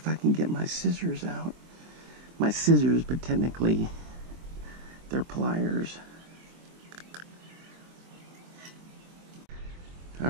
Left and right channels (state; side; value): late; left; 24 ms